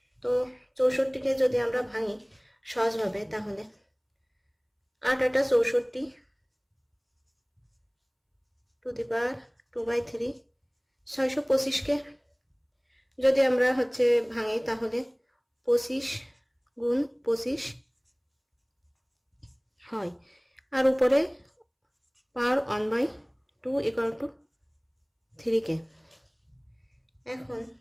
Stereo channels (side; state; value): both; identical; correlation 1.00